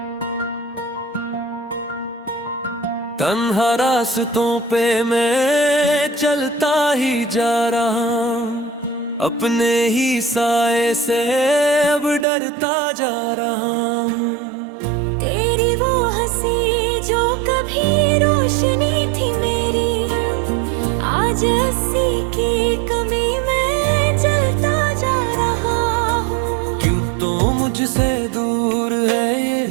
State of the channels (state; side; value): drops out; left; at 12.2 s